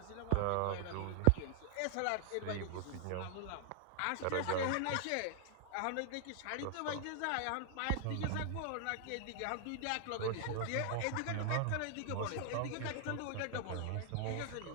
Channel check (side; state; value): both; different; correlation 0.00